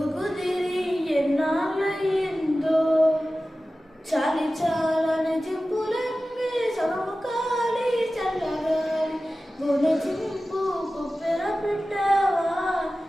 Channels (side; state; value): both; normal; correlation 0.95